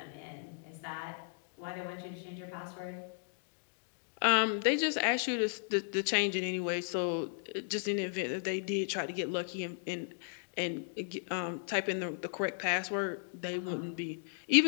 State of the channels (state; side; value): silent; right; digital silence